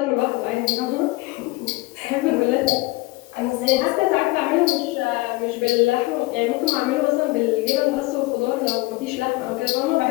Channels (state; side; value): quieter; right; 21.9 dB